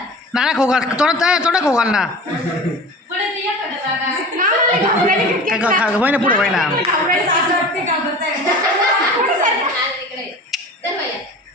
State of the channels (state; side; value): normal; both; correlation 0.37